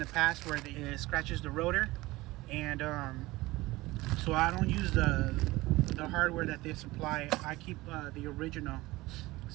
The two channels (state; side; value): quieter; left; 19.6 dB